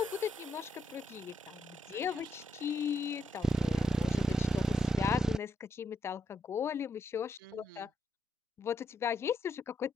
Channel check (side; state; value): both; normal; correlation 0.78